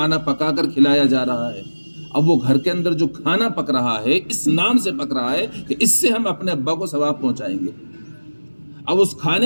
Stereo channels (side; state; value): both; inverted; correlation -1.00